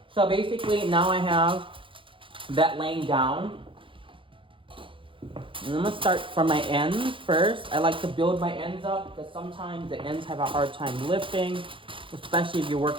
So basically now I have that laying down. And I'm gonna start from my ends first. I like to build my ends up because sometimes the ends have a hard time lifting, especially if you're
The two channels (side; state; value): left; late; 0.25 ms